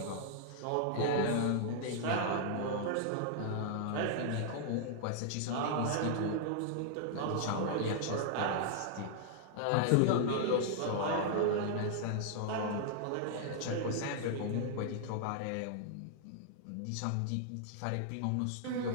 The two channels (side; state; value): both; different; correlation -0.01